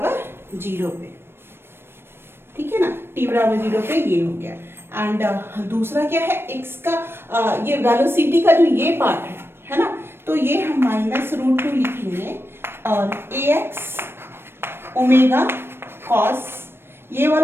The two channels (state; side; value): late; left; 0.11 ms